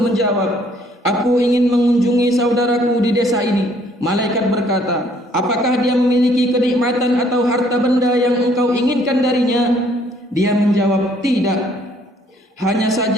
menjawab, "Aku ingin mengunjungi saudaraku di desa ini." Malaikat berkata, "Apakah dia memiliki kenikmatan atau harta benda yang engkau inginkan darinya?" Dia menjawab, "Tidak. Hanya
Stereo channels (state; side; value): normal; both; correlation 0.63